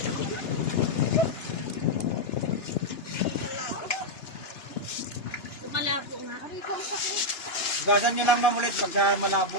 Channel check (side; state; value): right; late; 2.9 ms